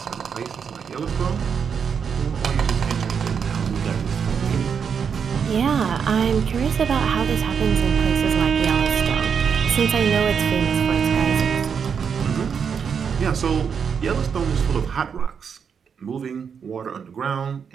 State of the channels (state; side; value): quieter; left; 6.8 dB